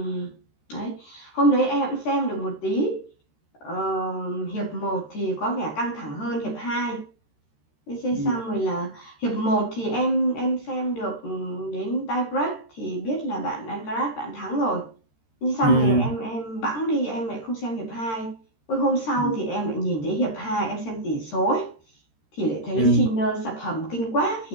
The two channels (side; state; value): right; late; 13 ms